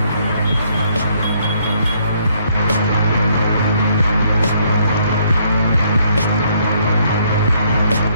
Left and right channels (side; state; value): both; inverted; correlation -0.68